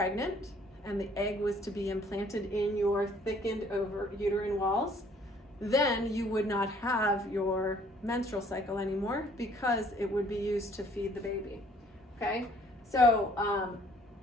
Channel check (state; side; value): normal; both; correlation 0.59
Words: and the egg was to be implanted in your thickened uterine walls, then you would not have your menstrual cycle anymore because it would be used to feed the baby. Okay, so